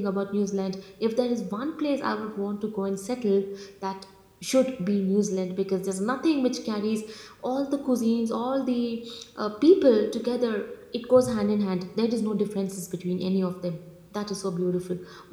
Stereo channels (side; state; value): both; identical; correlation 1.00